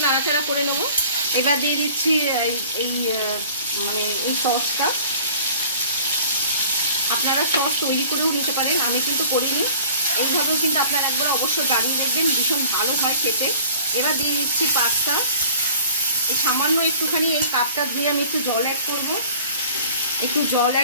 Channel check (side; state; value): both; inverted; correlation -0.47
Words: নাড়াচাড়া করে নেব। এবার দিয়ে দিচ্ছি এই সসটা। আপনারা সস তৈরি করেও নিতে পারেন, আমি কিন্তু করিনি। এইভাবেও কিন্তু আপনারা একবার অবশ্যই বানিয়ে দেখবেন, ভীষণ ভালো হয় খেতে। এবার দিয়ে দিচ্ছি পাস্তা। এই সামান্য একটুখানি এই কাপটা ধুয়ে আমি একটু জল অ্যাড করব, একটু জল